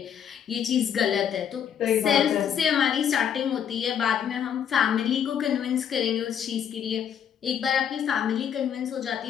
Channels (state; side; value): quieter; right; 8.6 dB